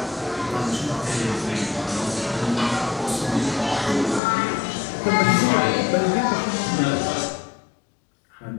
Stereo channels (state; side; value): drops out; right; at 4.2 s